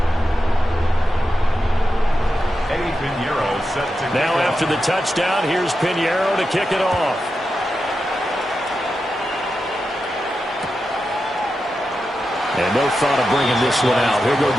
Now after the touchdown, here's Pinheiro to kick it off. And no thought of bringing this one out. He'll go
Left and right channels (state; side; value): normal; both; correlation 0.89